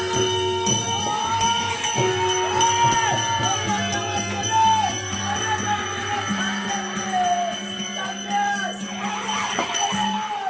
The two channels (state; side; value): identical; both; correlation 1.00